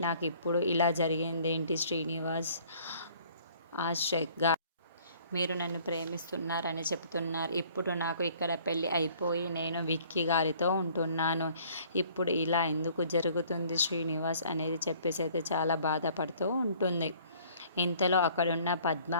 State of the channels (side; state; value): both; inverted; correlation -0.56